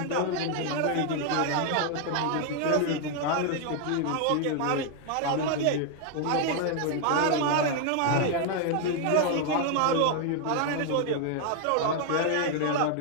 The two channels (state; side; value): different; both; correlation 0.00